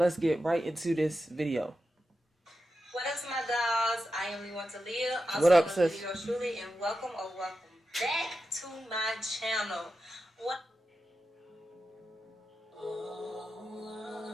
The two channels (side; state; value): both; normal; correlation 0.90